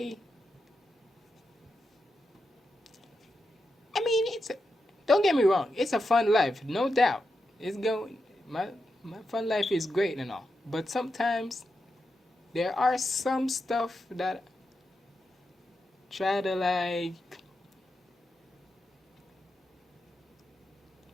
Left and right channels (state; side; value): normal; both; correlation 0.87